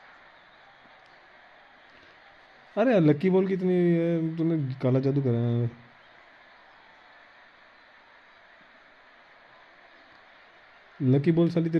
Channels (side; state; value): both; identical; correlation 1.00